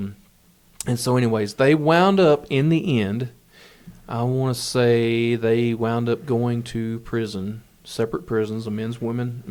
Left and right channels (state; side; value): identical; both; correlation 1.00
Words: so anyways, they wound up in the end, I want to say they wound up going to prison, separate prisons, a men's